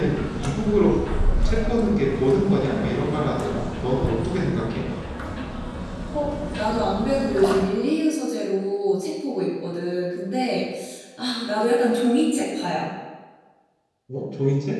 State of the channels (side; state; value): both; identical; correlation 1.00